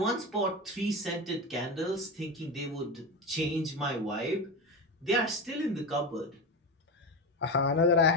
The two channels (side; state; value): both; normal; correlation 0.19